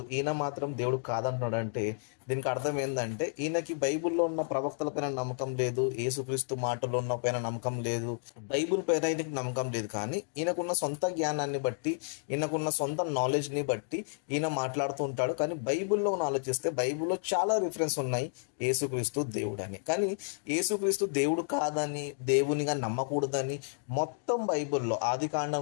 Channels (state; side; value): silent; right; digital silence